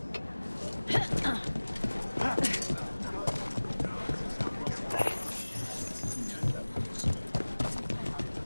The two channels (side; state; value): both; inverted; correlation -1.00